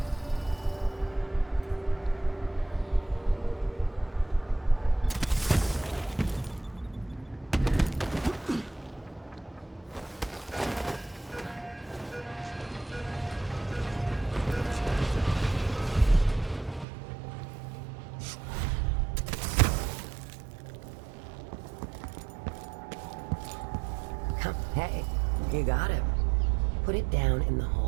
Hey, you got him. Put it down in the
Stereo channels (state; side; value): drops out; left; at 16.9 s